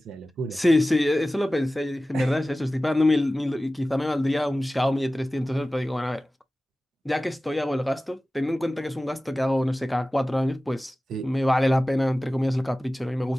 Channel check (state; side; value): normal; both; correlation 0.96